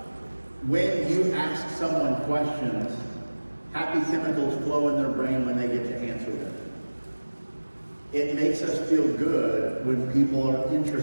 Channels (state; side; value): inverted; both; correlation -1.00